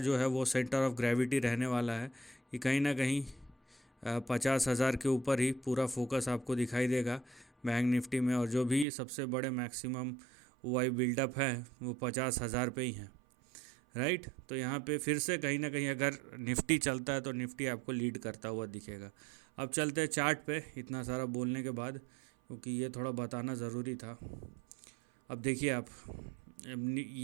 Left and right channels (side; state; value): left; drops out; at 8.8 s